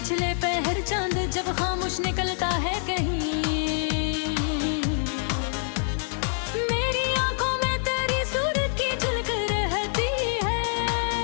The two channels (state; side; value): silent; right; 61 dB below the other